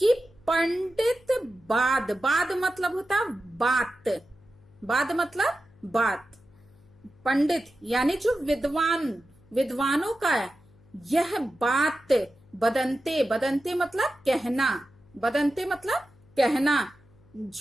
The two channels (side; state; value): left; noise; hum, 28 dB below the sound